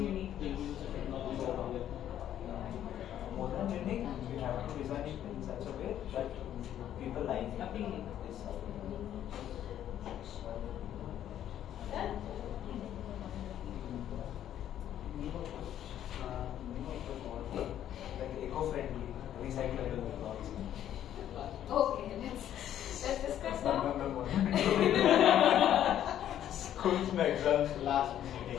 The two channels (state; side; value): quieter; right; 11.0 dB